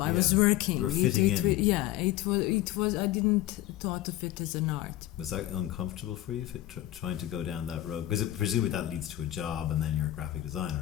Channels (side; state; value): right; quieter; 14.5 dB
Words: I was working. You were fitting in. It was. I didn't thought of it as an art. Was that uncomfortable for you, trying to go down that road? Because presumably that leads to a job, and then you're a graphic